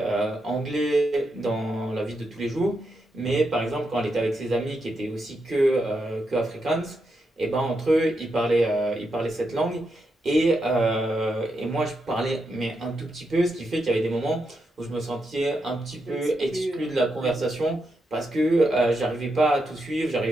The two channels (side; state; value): both; normal; correlation 0.84